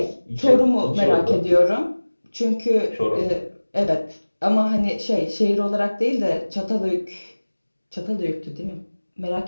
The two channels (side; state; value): both; inverted; correlation -1.00